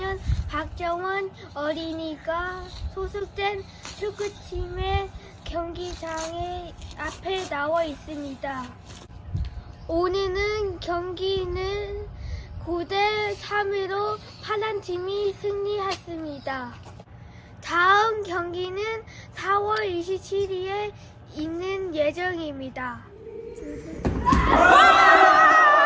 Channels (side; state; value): both; identical; correlation 1.00